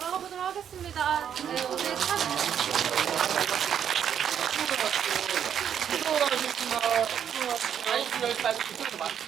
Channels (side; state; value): left; quieter; 8.8 dB